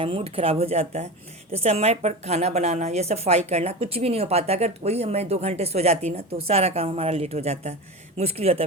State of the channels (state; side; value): normal; both; correlation 0.27